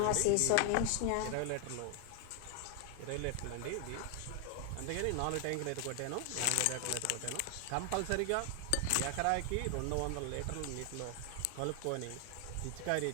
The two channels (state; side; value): different; both; correlation 0.00